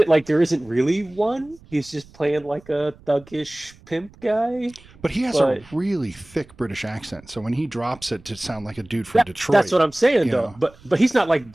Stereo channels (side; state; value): right; noise; rumble, 25 dB below the sound